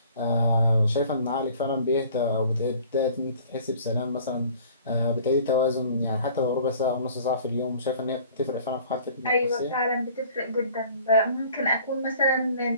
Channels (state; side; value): inverted; both; correlation -0.51